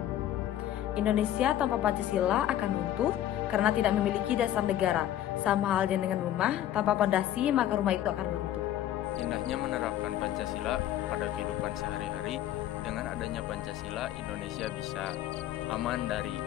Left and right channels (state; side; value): quieter; right; 12.2 dB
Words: Indonesia tanpa Pancasila akan runtuh karena tidak memiliki dasar negara. Sama halnya dengan rumah, tanpa pondasi maka rumah itu akan runtuh. Indahnya menerapkan Pancasila pada kehidupan sehari-hari. Dengan adanya Pancasila, Indonesia bisa aman dari